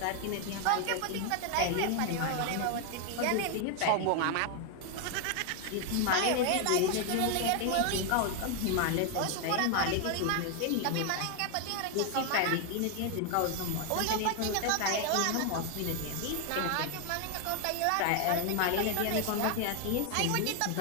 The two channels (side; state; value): both; different; correlation 0.00